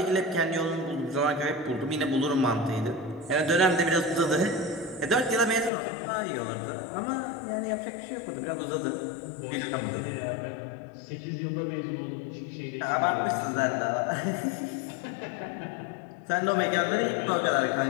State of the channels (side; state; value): right; drops out; at 5.7 s